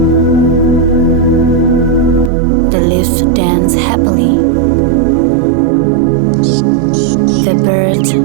The leaves danced happily. The birds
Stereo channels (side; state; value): left; drops out; at 2.3 s